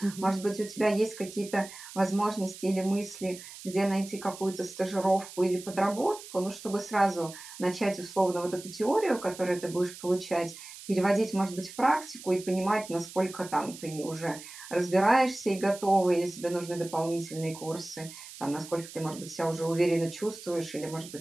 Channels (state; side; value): noise; right; hiss, 15 dB below the sound